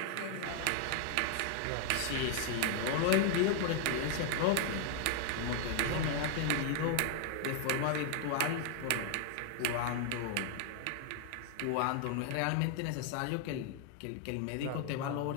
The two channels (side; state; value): both; different; correlation 0.00